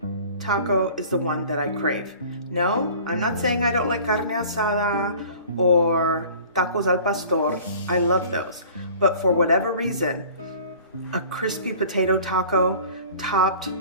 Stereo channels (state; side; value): inverted; both; correlation -0.46